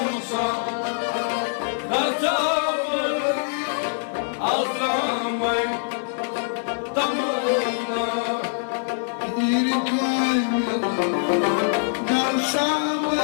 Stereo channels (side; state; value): right; silent; digital silence